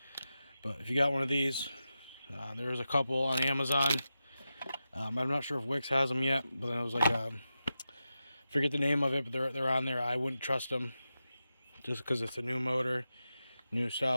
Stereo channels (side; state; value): both; inverted; correlation -0.91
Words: But if you got one of these, there's a couple on Amazon. I'm not sure if Wix has them yet, but it was like forget the name of it, but they're on there. I wouldn't trust them just because it's a new motor, new